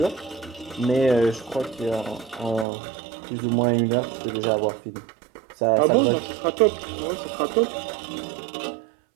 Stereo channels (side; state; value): left; drops out; at 2.7 s